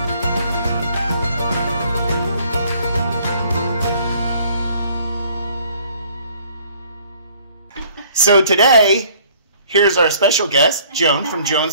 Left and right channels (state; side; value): inverted; both; correlation -0.58